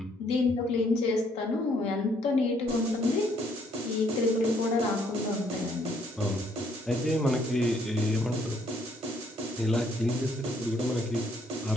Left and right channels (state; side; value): normal; both; correlation 0.67